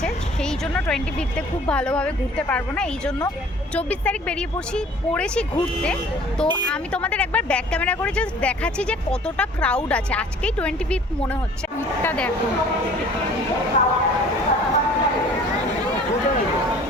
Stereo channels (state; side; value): normal; both; correlation 0.50